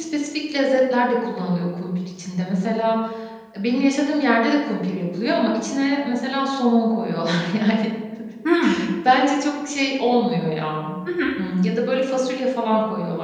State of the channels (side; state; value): both; identical; correlation 1.00